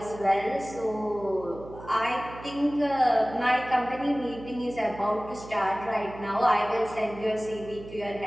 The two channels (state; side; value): noise; right; hum, 15 dB below the sound